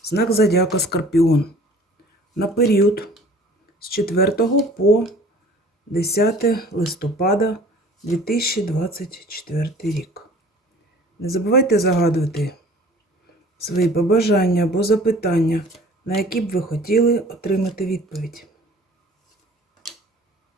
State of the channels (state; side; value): normal; both; correlation 0.49